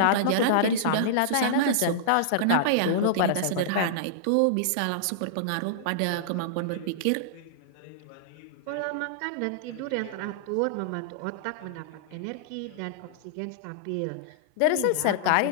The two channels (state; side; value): different; both; correlation -0.02